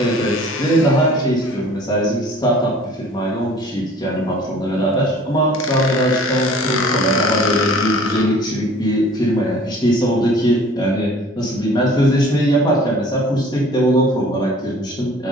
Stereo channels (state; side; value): normal; both; correlation 0.49